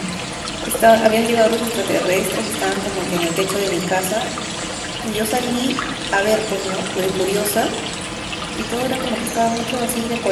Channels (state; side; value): identical; both; correlation 1.00